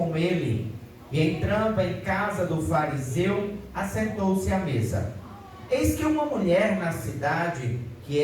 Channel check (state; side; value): identical; both; correlation 1.00